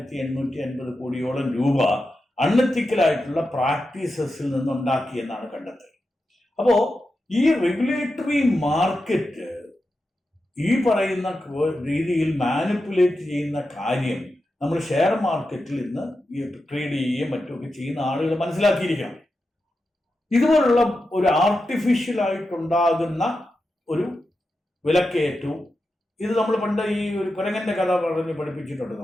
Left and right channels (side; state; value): both; normal; correlation 0.90